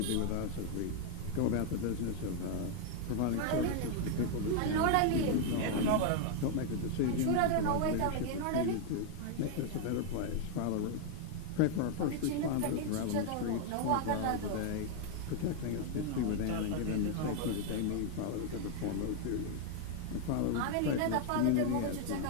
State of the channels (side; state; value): both; different; correlation 0.00